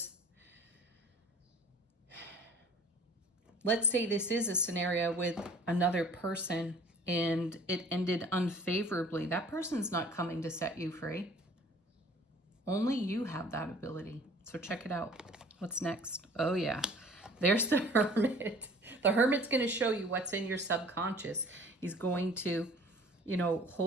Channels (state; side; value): normal; both; correlation 0.49